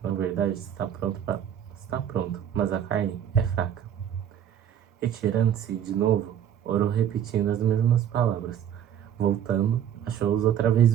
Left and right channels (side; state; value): left; quieter; 9.6 dB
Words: na verdade, está pronto, mas a carne é fraca. Retirando-se de novo, orou repetindo as mesmas palavras. Voltando, achou-os outra vez